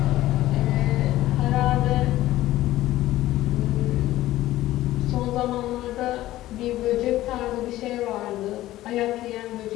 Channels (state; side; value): quieter; right; 15.4 dB